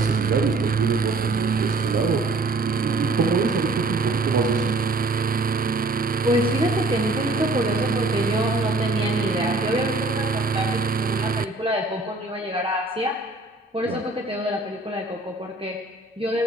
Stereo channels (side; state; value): left; quieter; 3.2 dB